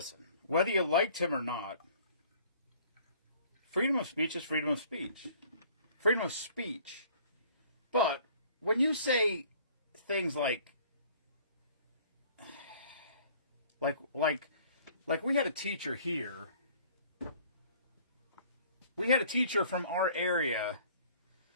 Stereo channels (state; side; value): inverted; both; correlation -0.54